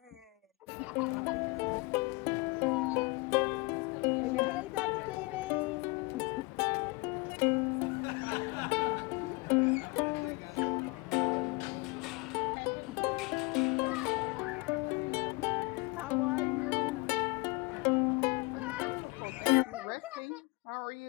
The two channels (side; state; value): right; quieter; 26.9 dB